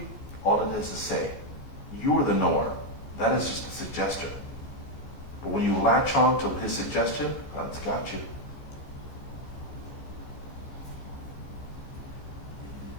all it is say, you are the knower. That is just a suggestion. But when you latch on to his suggestion, that's got you.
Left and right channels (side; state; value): right; late; 15 ms